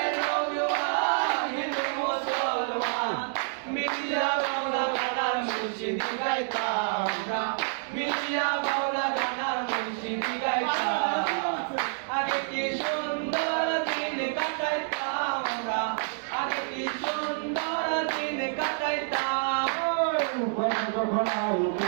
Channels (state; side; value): silent; left; digital silence